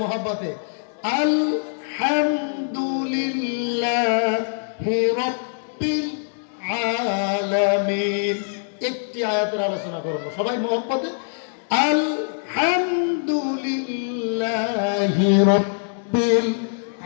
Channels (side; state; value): right; silent; digital silence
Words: মহব্বতে আলহামদুলিল্লাহি রাব্বিল আলামিন। একটি আয়াতের আলোচনা করব, সবাই মহব্বতে আলহামদুলিল্লাহি রাব্বিল